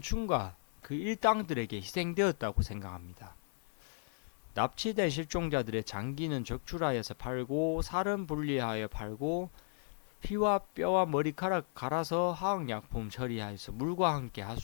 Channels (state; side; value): silent; right; 54 dB below the other